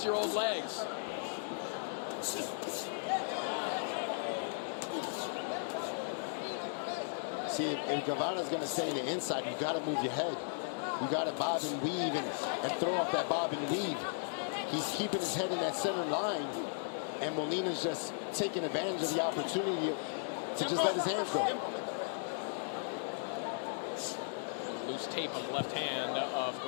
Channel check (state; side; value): silent; right; digital silence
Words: legs. See, if Guevara's going to stay in the inside, you got to move your head. You got to bob and weave and throw off that bob and weave. He's keeping his head in that center line, and Molina's just taking advantage of the opportunity to just let his hands go. Loose tape on the left hand of